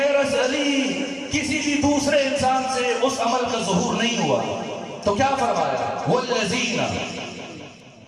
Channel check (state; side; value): identical; both; correlation 1.00